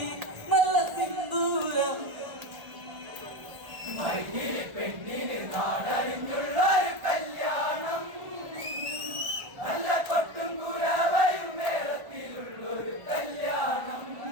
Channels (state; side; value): late; left; 1.4 ms